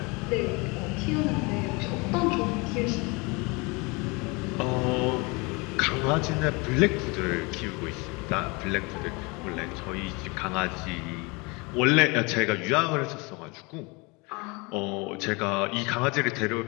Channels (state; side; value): quieter; right; 27.7 dB